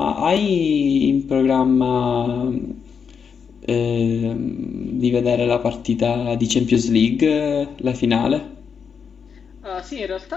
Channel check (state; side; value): quieter; right; 6.5 dB